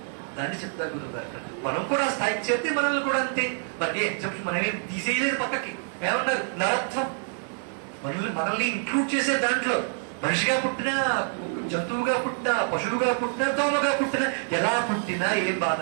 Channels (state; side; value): silent; left; 60 dB below the other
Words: దాన్ని చెప్తారు గురుగారు. మనం కూడా స్థాయికి చేస్తే మనల్ని కూడా అంతే. మనకి ఎగ్జాంపుల్ మనమేం తీసేయలేదు పక్కకి. ఏమన్నారు? నరత్వం. మనల్ని ఇంక్లూడ్ చేసే దాంట్లో మనిషిగా పుట్టినా, జంతువుగా పుట్టినా, పశువుగా పుట్టినా, దోమగా పుట్టినా, ఎలా పుట్టినా ఏం బాధ